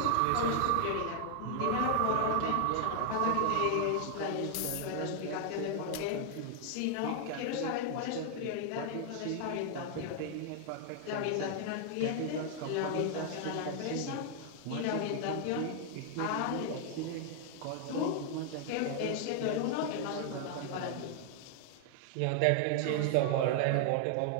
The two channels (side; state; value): both; different; correlation 0.00